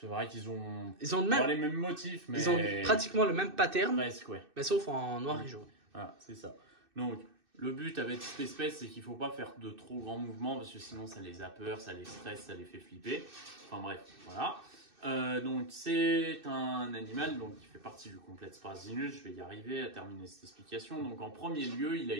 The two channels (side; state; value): left; late; 2.6 ms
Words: vrai qu'ils ont même... les mêmes motifs, mais... Ils ont pratiquement le même pattern, presque, ouais. Mais sauf en noir et jaune. Voilà, c'est ça. Donc... Le but avec cette espèce, c'est qu'il ne faut pas faire de trop grands mouvements parce que sinon ça les a peur, ça les stresse, ça les fait flipper. Enfin bref, voilà. Donc c'est un animal qui fait partie du complexe Prasinus. Je vais y arriver à terminer cette explication. Donc en premier lieu, il a